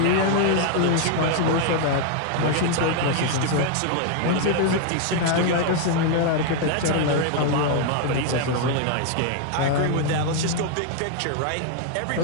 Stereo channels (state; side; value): different; both; correlation 0.00